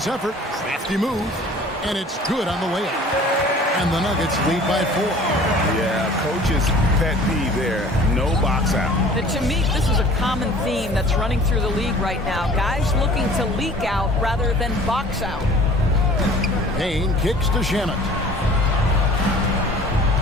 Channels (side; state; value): both; normal; correlation 0.48